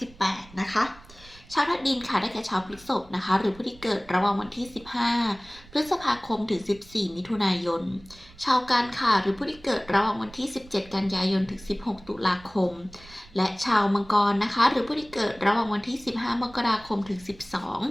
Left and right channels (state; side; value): noise; right; rumble, 22 dB below the sound